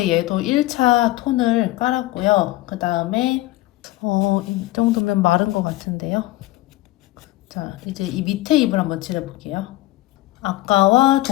얘도 1차 톤을 깔았고요. 그 다음에 이 정도면 마른 것 같은데요. 자, 이제 이 밑에 잎을 한번 칠해볼게요. 아까와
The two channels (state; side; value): quieter; right; 17.6 dB